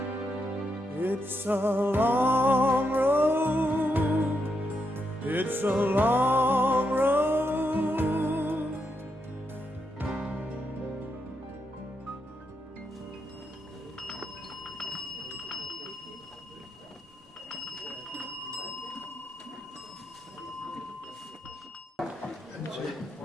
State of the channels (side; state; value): both; normal; correlation 0.82